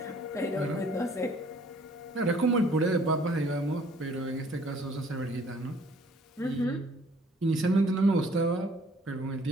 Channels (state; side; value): normal; both; correlation 0.58